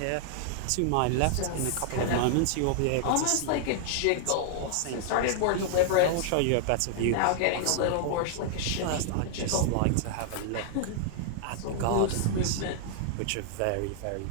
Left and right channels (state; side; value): different; both; correlation -0.01